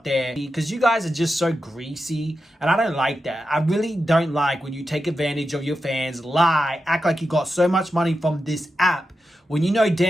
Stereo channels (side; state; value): both; normal; correlation 0.90